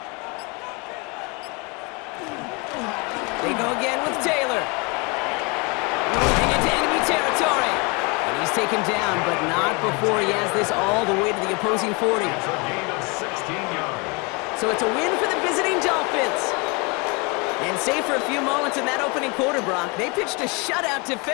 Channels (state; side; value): quieter; right; 30.0 dB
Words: They go again with Taylor. Moving into enemy territory. And he's taken down, but not before he has this all the way to the opposing 40. It's a gain of 16 yards. So it's a win for the visiting Dolphins. And save for a few moments in that opening quarter, Brock, they pitched a shutout